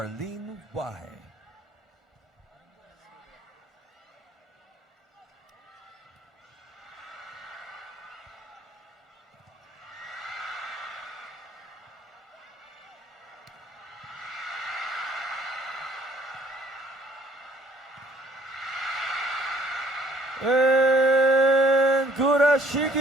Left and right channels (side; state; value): both; normal; correlation 0.59